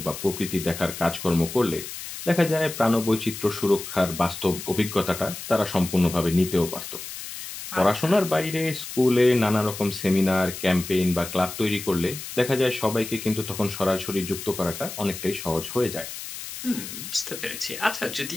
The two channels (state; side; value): noise; left; hiss, 9 dB below the sound